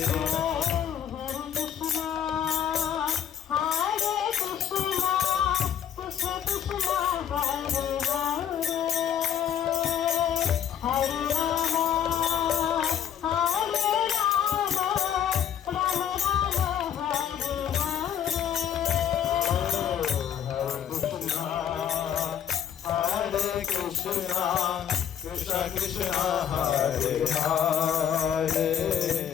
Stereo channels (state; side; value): quieter; right; 9.2 dB